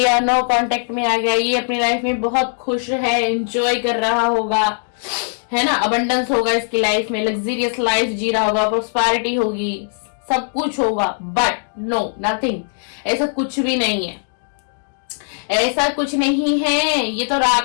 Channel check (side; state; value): right; silent; digital silence